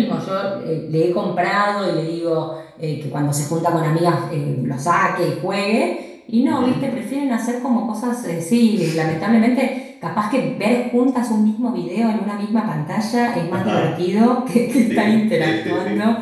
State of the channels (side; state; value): both; identical; correlation 1.00